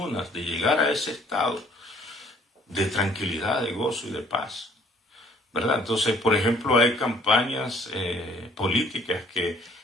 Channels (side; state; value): both; normal; correlation 0.59